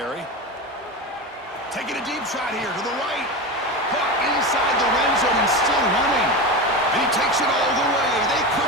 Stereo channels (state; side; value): normal; both; correlation 0.22